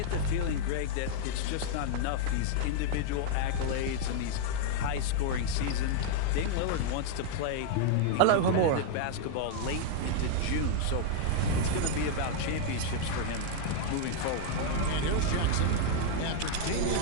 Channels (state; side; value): different; both; correlation -0.01